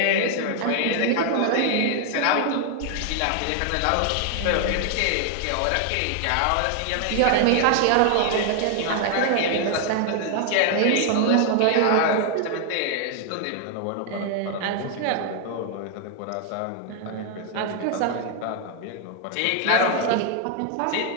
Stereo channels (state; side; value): different; both; correlation 0.00